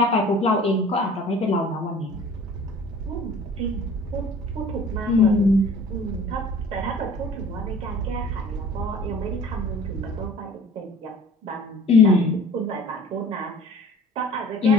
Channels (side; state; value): both; normal; correlation 0.47